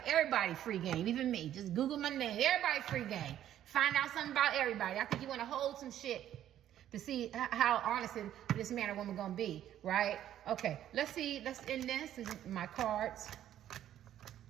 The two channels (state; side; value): quieter; left; 11.5 dB